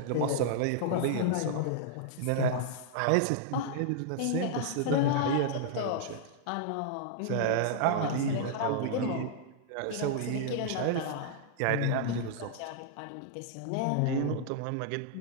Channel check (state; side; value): different; both; correlation -0.01